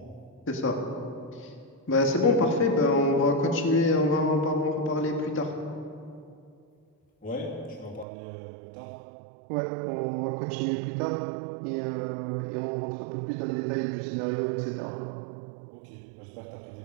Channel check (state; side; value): drops out; left; at 8.1 s